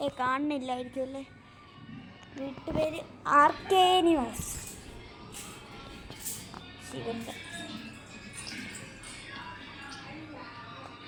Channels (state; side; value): identical; both; correlation 1.00